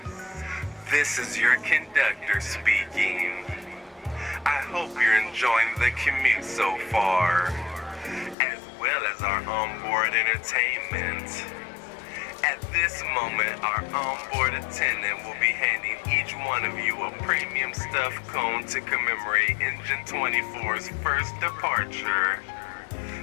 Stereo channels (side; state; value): right; drops out; at 8.3 s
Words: this is your conductor speaking. I hope you're enjoying the commute so far, as well as our onboard entertainment. At this moment, our onboard attendant will be handing each one of you a premium stuffed cone to commemorate Engine 24's first departure.